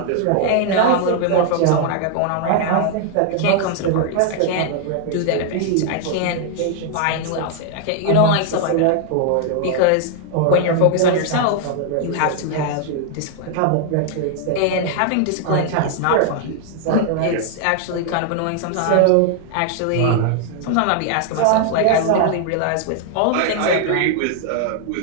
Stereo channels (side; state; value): both; different; correlation 0.00